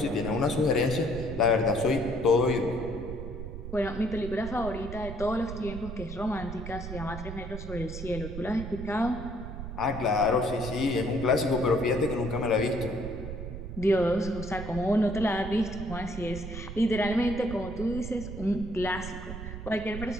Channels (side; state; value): right; noise; rumble, 8 dB below the sound